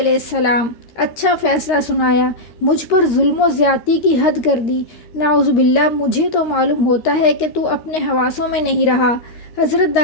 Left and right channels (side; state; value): right; late; 13 ms